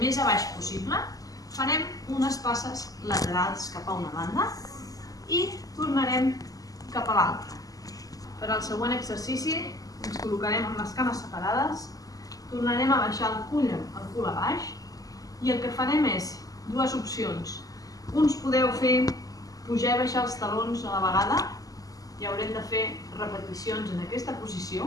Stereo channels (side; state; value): right; late; 0.17 ms